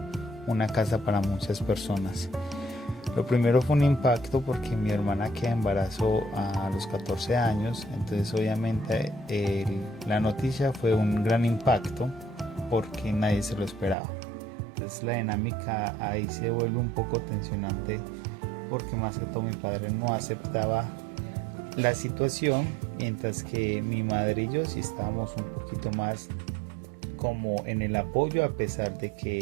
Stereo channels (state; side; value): drops out; left; at 14.0 s